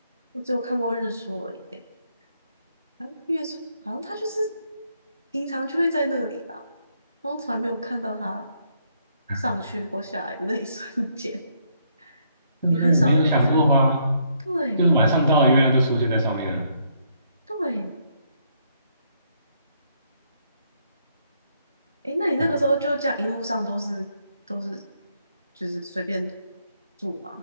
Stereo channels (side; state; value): both; inverted; correlation -0.73